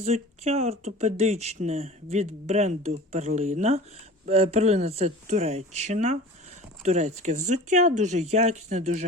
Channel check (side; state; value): both; normal; correlation 0.40